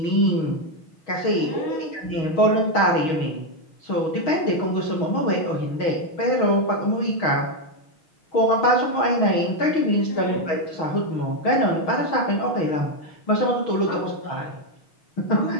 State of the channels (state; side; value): late; right; 6.3 ms